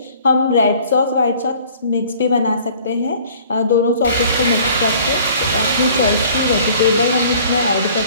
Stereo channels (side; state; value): both; inverted; correlation -0.52